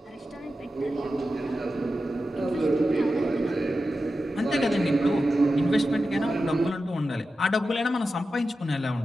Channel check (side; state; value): both; normal; correlation 0.92